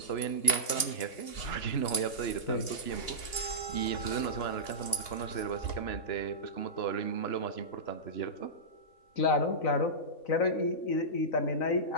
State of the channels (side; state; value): right; late; 2.8 ms